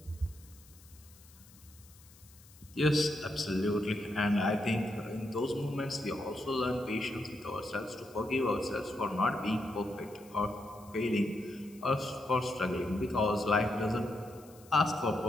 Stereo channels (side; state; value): left; noise; hiss, 24 dB below the sound